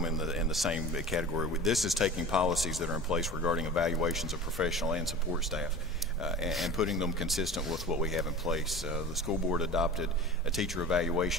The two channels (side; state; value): both; normal; correlation 0.35